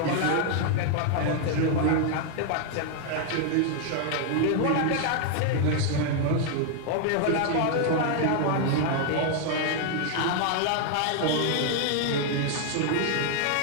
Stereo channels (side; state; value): both; different; correlation 0.00